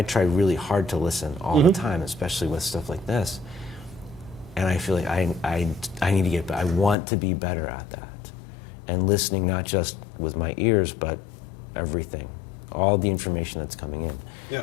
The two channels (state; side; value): drops out; right; at 7.0 s